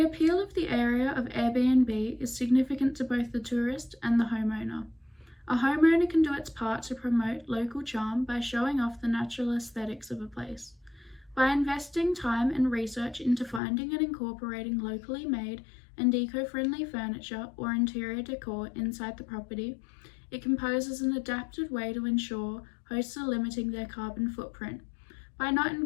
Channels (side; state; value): right; drops out; at 13.6 s